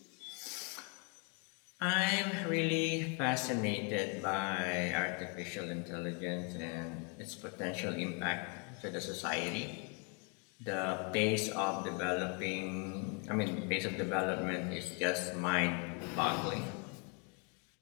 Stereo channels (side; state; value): right; quieter; 36.5 dB